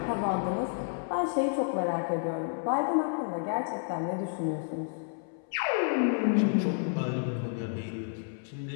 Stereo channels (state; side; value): silent; right; 57 dB below the other